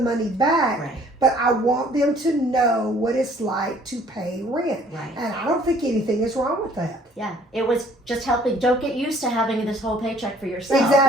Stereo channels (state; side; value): normal; both; correlation 0.57